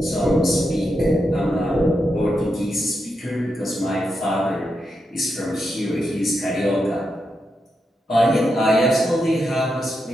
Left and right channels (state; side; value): normal; both; correlation 0.85